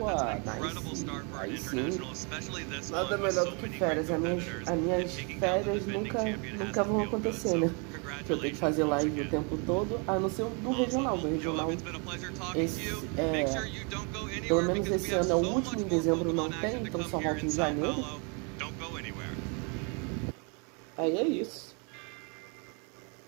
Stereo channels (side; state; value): left; quieter; 34.7 dB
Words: nice. Aí sim. Nada melhor do que férias. As minhas férias nunca vão acontecer, né? Que eu tenho que fazer live o tempo todo, a não ser do regional. Do regional, pelo menos esse ano é o último, em dezembro não tem, então só volta em janeiro. Aí é isso.